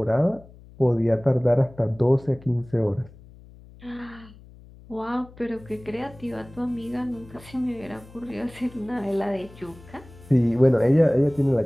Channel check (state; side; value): noise; left; hum, 22 dB below the sound